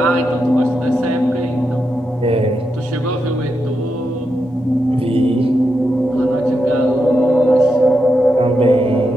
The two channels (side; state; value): both; normal; correlation 0.85